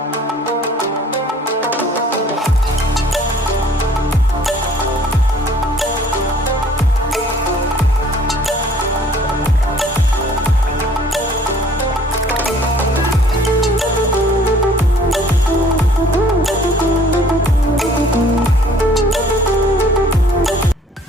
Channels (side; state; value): both; normal; correlation 0.55